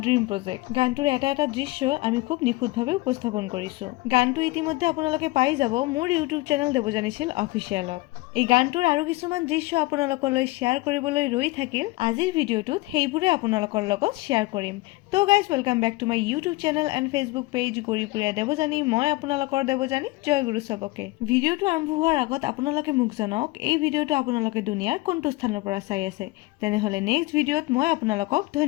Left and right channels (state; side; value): quieter; right; 21.2 dB